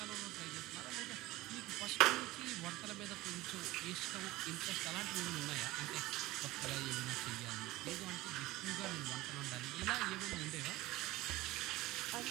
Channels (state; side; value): quieter; left; 18.5 dB